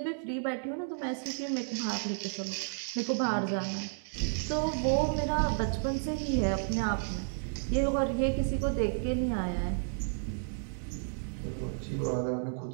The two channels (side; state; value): left; silent; digital silence